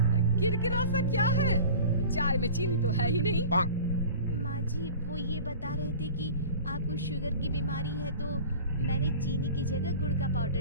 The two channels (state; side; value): inverted; both; correlation -0.40